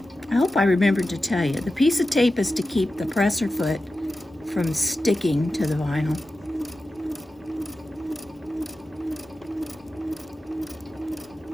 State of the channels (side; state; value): both; normal; correlation 0.92